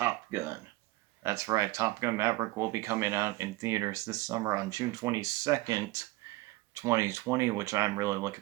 Gun. That's right, Top Gun Maverick will be coming out in theaters this summer on June 22nd, 2020, which I'm really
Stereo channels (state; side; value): quieter; left; 20.2 dB